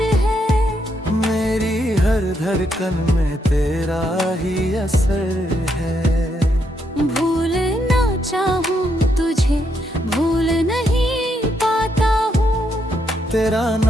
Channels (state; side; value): normal; both; correlation 0.78